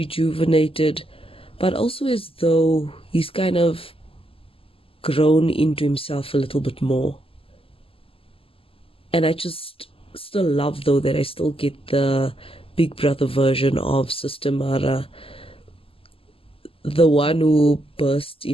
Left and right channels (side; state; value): right; late; 0.26 ms